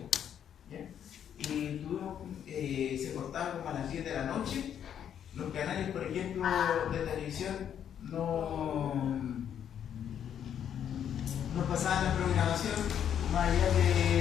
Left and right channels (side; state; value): right; quieter; 9.2 dB